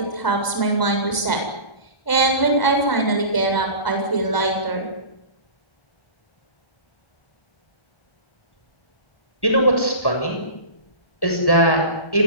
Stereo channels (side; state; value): right; late; 1.0 ms